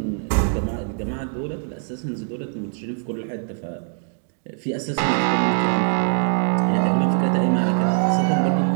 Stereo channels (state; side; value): silent; left; 64 dB below the other